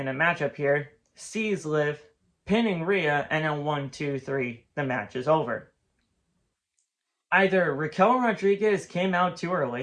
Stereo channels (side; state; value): both; identical; correlation 1.00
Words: a matchup here, sees Liv, pinning Rhea, and then 1, 2, 3, the match is over. Either Raquel Rodriguez came out too